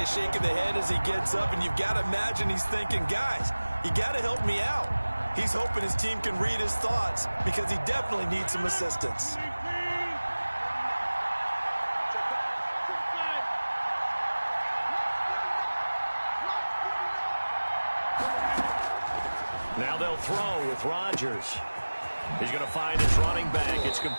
shake of the head as he gets up, and you've got to imagine he's thinking, guys, you got to help me out. He's hoping his team can read his thoughts because he definitely needs some assistance. Now they'll throw with Rodgers. He's going to find his running back. It's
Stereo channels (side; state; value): both; inverted; correlation -1.00